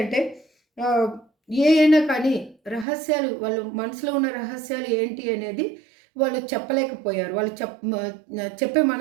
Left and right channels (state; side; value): drops out; left; at 2.9 s